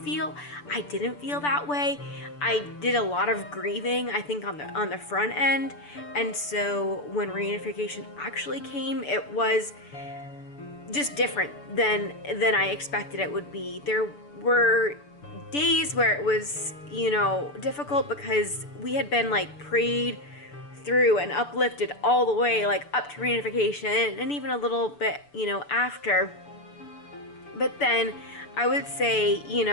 I didn't feel that way. I did a lot of grieving, I think, on the front end, and so when reunification actually came, it was just different than I expected it would be. There were days where it was, difficult because we had been like prayed through and uplifted all the way like up to reunification, and even a little bit, after. But then I would say,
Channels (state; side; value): late; right; 6.9 ms